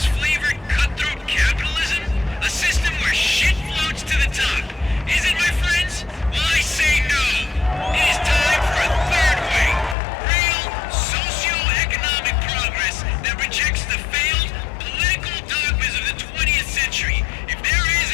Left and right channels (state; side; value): drops out; right; at 10.0 s